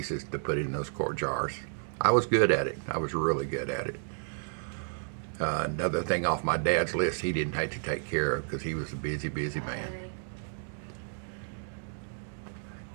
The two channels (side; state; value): left; silent; 57 dB below the other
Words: to put in those quart jars. I was good at it. I was really good at it. Another thing off my dad's list he didn't have to take care of because he was a busy, busy man.